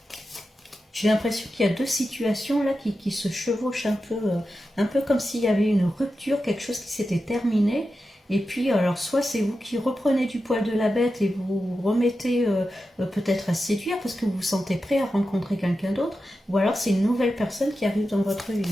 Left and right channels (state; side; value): normal; both; correlation 0.91